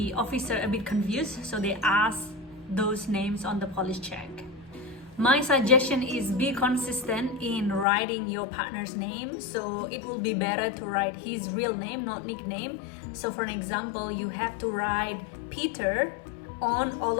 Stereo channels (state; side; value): drops out; right; at 7.9 s